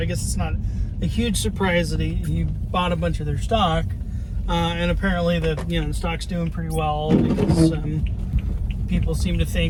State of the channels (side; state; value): both; identical; correlation 1.00